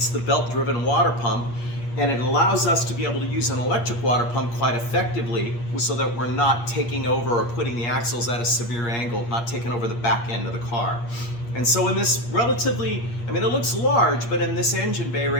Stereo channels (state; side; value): late; right; 8.5 ms